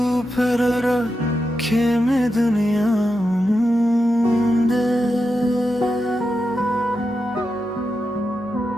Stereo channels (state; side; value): normal; both; correlation 0.88